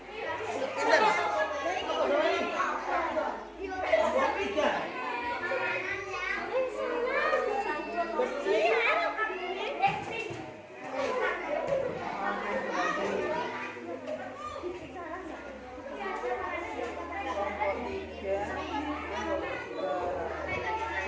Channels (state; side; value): identical; both; correlation 1.00